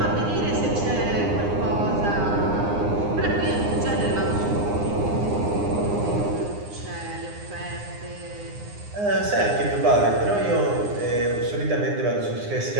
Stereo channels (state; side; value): late; left; 9.8 ms